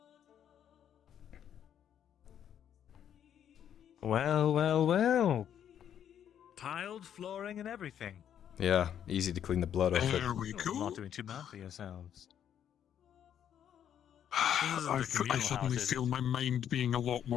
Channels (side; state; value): right; quieter; 9.5 dB